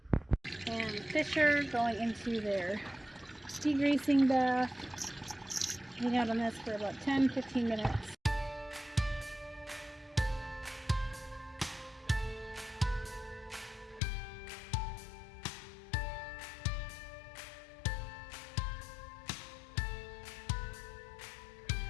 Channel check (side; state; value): right; drops out; at 14.0 s